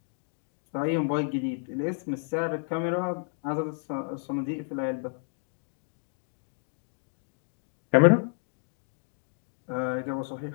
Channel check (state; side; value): silent; right; 55 dB below the other